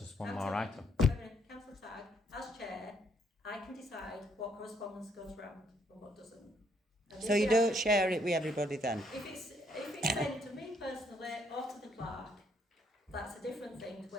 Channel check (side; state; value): both; normal; correlation 0.70